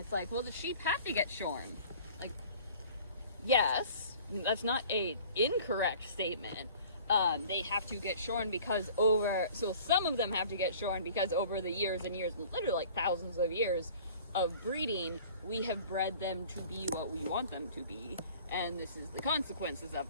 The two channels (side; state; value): both; inverted; correlation -0.48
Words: like, well, the sheep have to get shorn. Like, yes, that's not a incorrect statement. They have to get shorn because so some of them have to get shorn because over the years and years, literally like thousands of years of breeding, we have bred them to be what we want them to be, and this is the consequences of